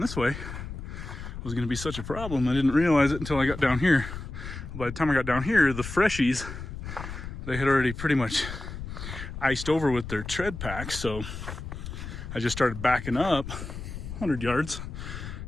way was going to be such a problem. I didn't realize it until I got down here. By the time I got down here, the freshies, they had already pretty much iced over with their tread packs. So I just started backing up 100 yards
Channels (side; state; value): left; noise; rumble, 9 dB below the sound